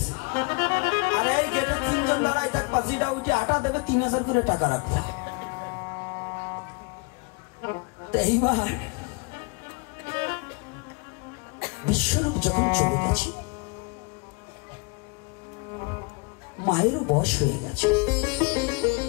আরে এই গেটে 3 জন দাঁড়ায় থাকবা, যেটা ওইটি আটা দেবে 3000 করে টাকা রাখবে। তো এইবার বিশ্বরূপ যখন চলে গেছে, মায়েরও বয়স হয়ে গেছে।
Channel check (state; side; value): quieter; right; 30.5 dB